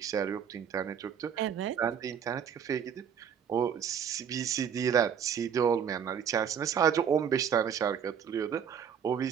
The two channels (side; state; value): left; quieter; 7.9 dB